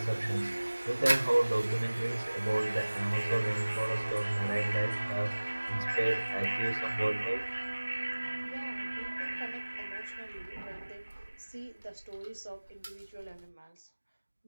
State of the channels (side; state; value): both; inverted; correlation -1.00